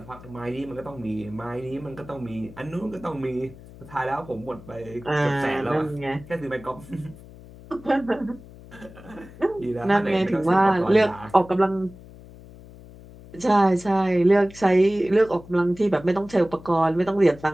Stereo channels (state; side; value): noise; left; hum, 19 dB below the sound